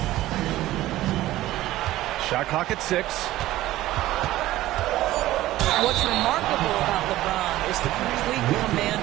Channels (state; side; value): quieter; left; 15.6 dB